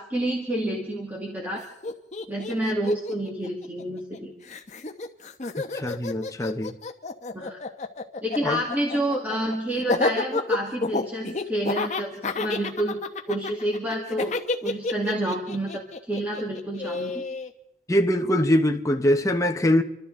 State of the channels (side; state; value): both; normal; correlation 0.62